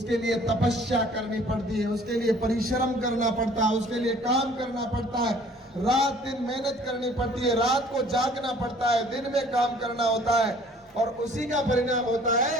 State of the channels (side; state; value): both; normal; correlation 0.54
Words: लिए तपस्या करनी पड़ती है, उसके लिए परिश्रम करना पड़ता है, उसके लिए काम करना पड़ता है, रात दिन मेहनत करनी पड़ती है, रात को जागना पड़ता है, दिन में काम करना होता है, और उसी का परिणाम होता है